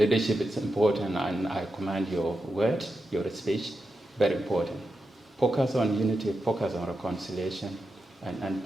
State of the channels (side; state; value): both; normal; correlation 0.89